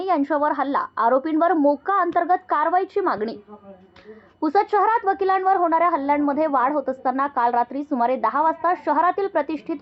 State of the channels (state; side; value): identical; both; correlation 1.00